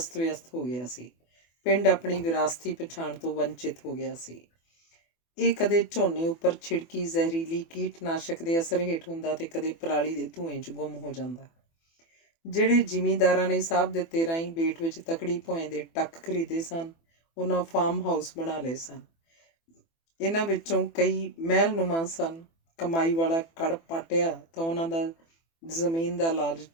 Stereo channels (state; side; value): late; right; 24 ms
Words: ਵਿਅਸਤ ਹੋ ਗਿਆ ਸੀ। ਪਿੰਡ ਆਪਣੀ ਵਿਰਾਸਤੀ ਪਛਾਣ ਤੋਂ ਵੰਚਿਤ ਹੋ ਗਿਆ ਸੀ। ਇਹ ਕਦੇ ਝੋਨੇ ਉੱਪਰ ਛਿੜਕੀ ਜ਼ਹਿਰੀਲੀ ਕੀਟਨਾਸ਼ਕ ਦੇ ਅਸਰ ਹੇਠ ਹੁੰਦਾ ਤੇ ਕਦੇ ਪਰਾਲੀ ਦੇ ਧੂਏਂ 'ਚ ਗੁੰਮ ਹੋ ਜਾਂਦਾ। ਜਿਹੜੇ ਜ਼ਿਮੀਂਦਾਰਾਂ ਨੇ ਸਾਹਿਬ ਦਿੱਤੇ ਰਾਹੀਂ ਬੇਟ ਵਿੱਚ ਤਕੜੀ ਭੌਂ ਦੇ ਟੱਕ ਖਰੀਦੇ ਸਨ, ਉਹਨਾਂ ਫਾਰਮ ਹਾਊਸ ਬਣਾ ਲਏ ਸਨ। ਇਹਨਾਂ ਵਿੱਚੋਂ ਕਈ ਮਹਿਲਨੁਮਾ ਸਨ। ਕਮਾਈ ਵਾਲਾ ਕੜ ਪਾਟਿਆ ਤਾਂ ਉਹਨਾਂ ਦਾ ਜ਼ਮੀਨ ਦਾ